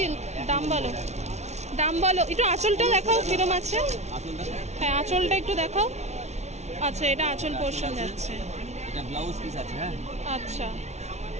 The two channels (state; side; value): late; left; 0.32 ms